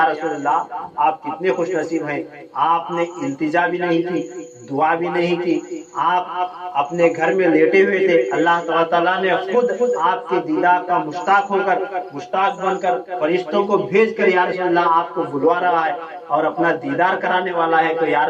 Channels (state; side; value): identical; both; correlation 1.00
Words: رسول اللہ آپ کتنے خوش نصیب ہیں، آپ نے التجا بھی نہیں کی، دعا بھی نہیں کی، آپ اپنے گھر میں لیٹے ہوئے تھے، اللہ تعالیٰ نے خود آپ کے دیدار کا مشتاق ہو کر، مشتاق بن کر فرشتوں کو بھیج کر یا رسول اللہ آپ کو بلوا رہا ہے اور اپنا دیدار کرانے والا ہے، تو یا